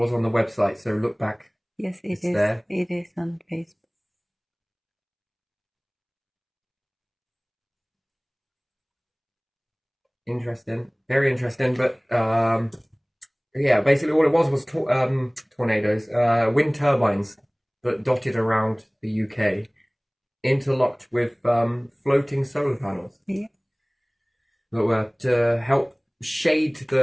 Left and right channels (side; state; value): both; identical; correlation 1.00